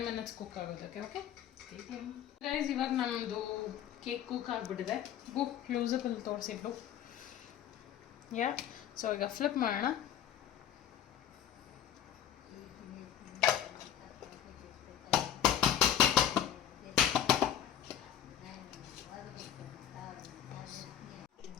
ಮಿನಿಟ್ಸ್ ಕುಕ್ ಆಗೋದಕ್ಕೆ. ಓಕೆ ಗೈಸ್, ಇವಾಗ ನಮ್ಮದು ಕೇಕ್ ಕುಕ್ ಆಗಿಬಿಟ್ಟಿದೆ. ಬುಕ್ ಕ್ಲೋಸಪ್ಪಲ್ಲಿ ತೋರಿಸಿದ್ರು. ಸೊ ಈಗ ಫ್ಲಿಪ್ ಮಾಡೋಣ.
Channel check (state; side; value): quieter; right; 10.2 dB